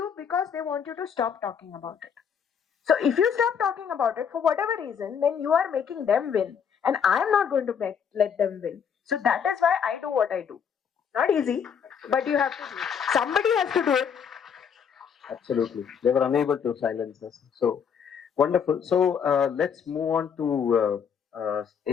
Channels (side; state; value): right; quieter; 7.3 dB